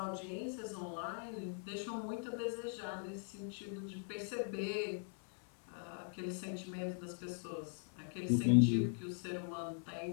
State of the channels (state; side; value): silent; right; 50 dB below the other